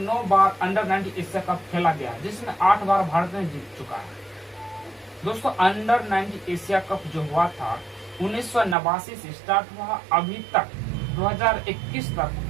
बार अंडर 90 एशिया कप खेला गया, जिसमें 8 बार भारत ने जीत चुका है दोस्तों। अंडर 90 एशिया कप जो हुआ था 1989 से स्टार्ट हुआ, अभी तक 2021 तक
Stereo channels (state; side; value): drops out; left; at 8.8 s